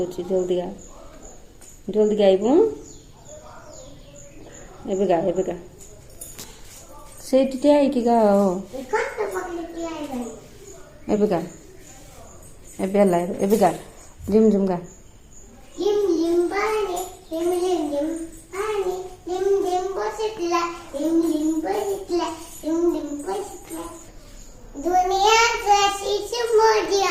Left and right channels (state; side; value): identical; both; correlation 1.00